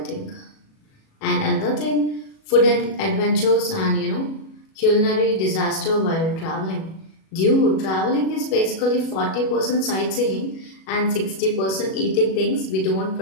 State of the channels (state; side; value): late; right; 37 ms